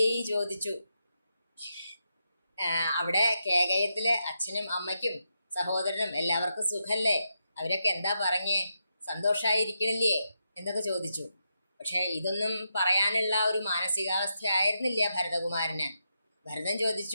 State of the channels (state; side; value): inverted; both; correlation -0.85